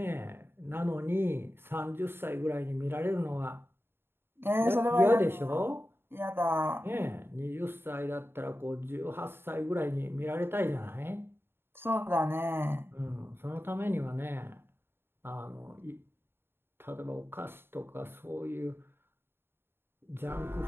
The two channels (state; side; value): late; left; 0.11 ms